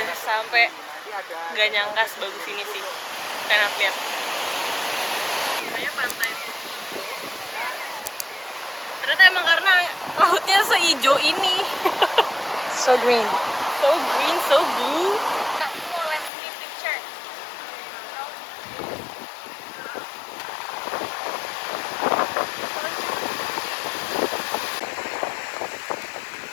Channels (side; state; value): right; drops out; at 16.3 s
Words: sampai, nggak nyangka sebagus ini sih. Enak lihat. Kayaknya pantai ternyata emang karena lautnya seijo ini. So green. So green, so blue.